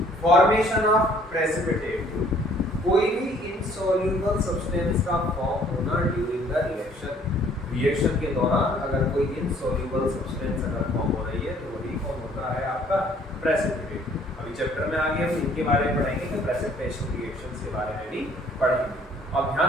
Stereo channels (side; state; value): both; normal; correlation 0.59